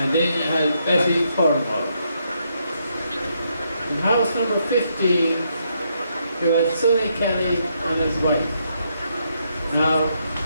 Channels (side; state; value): both; inverted; correlation -0.77